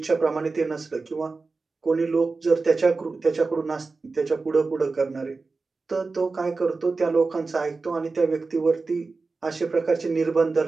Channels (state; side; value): quieter; left; 4.0 dB